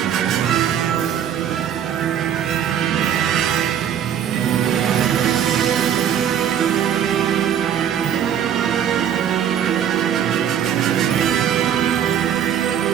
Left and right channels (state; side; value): quieter; left; 9.3 dB